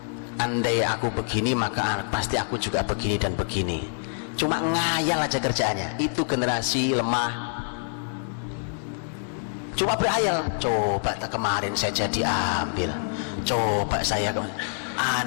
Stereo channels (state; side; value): silent; right; 60 dB below the other